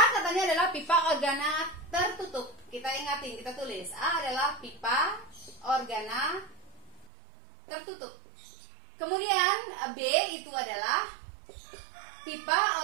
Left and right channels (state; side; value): drops out; left; at 7.1 s